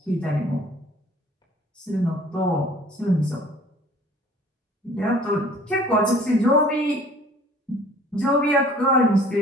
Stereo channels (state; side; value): normal; both; correlation 0.51